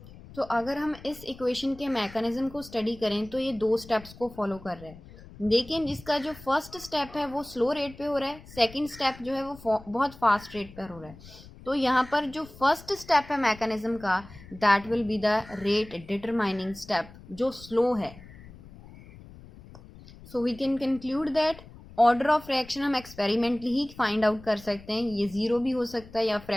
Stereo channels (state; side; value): noise; left; rumble, 19 dB below the sound